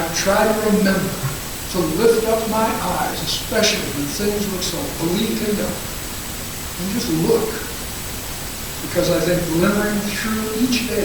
tried to remember to lift up my eyes, especially when things look so bleak and dark, and just look. Because I think glimmering through each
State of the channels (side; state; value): both; identical; correlation 1.00